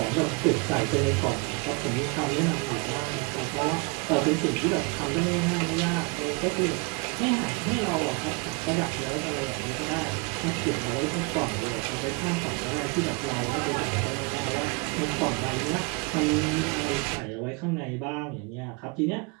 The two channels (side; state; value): left; quieter; 30.6 dB